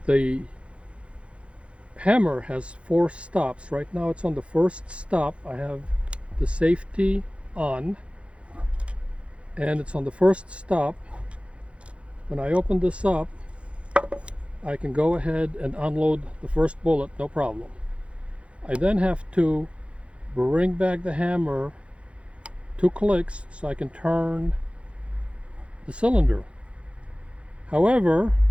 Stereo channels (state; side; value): late; left; 0.060 ms